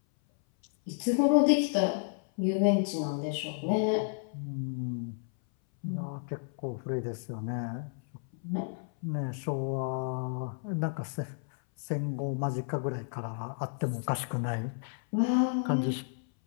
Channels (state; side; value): silent; right; 57 dB below the other